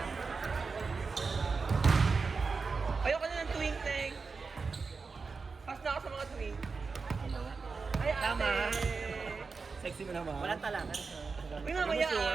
Ayoko na ng twink, Teng. Pas na ako sa mga twink. Ay, ate. Tama. Sexy mo naman. Walang talakan. Uy, mamaya,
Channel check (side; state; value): left; quieter; 4.6 dB